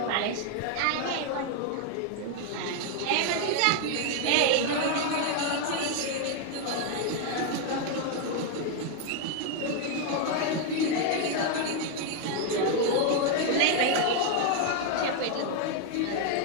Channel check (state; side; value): different; both; correlation 0.01